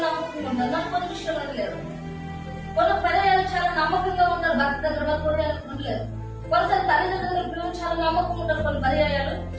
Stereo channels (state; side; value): identical; both; correlation 1.00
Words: నమ్మకంగా కొన్ని విషయాలు లేరు. కొన్ని పర్యాలు చాలా నమ్మకంగా ఉంటారు. భర్త దగ్గర ఉండలేరు. కొన్నిసారి తల్లిదండ్రుల పిల్లలు చాలా నమ్మకం ఉంటారు. కొన్ని పర్యాయాలు